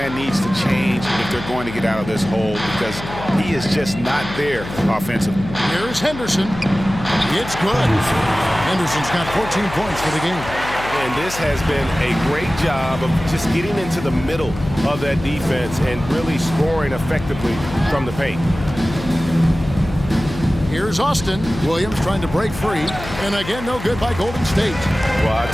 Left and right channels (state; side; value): noise; left; hum, 11 dB below the sound